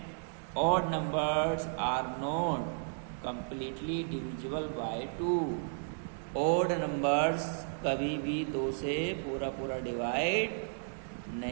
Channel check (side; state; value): left; silent; digital silence